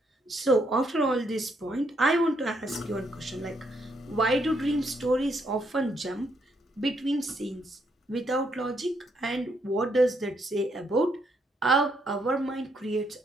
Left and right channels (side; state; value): both; normal; correlation 0.74